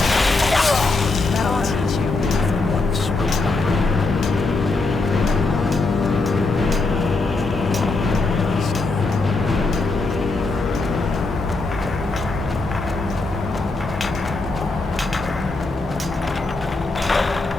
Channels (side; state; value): right; quieter; 3.4 dB